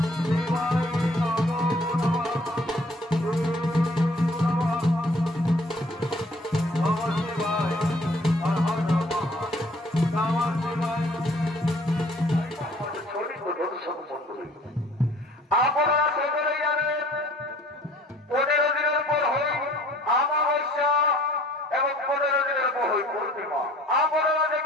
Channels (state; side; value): normal; both; correlation 0.55